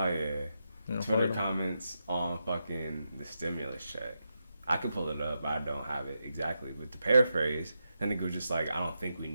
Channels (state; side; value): inverted; both; correlation -0.86